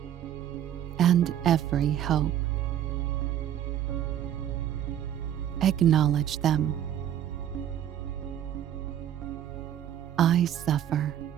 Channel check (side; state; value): left; quieter; 10.6 dB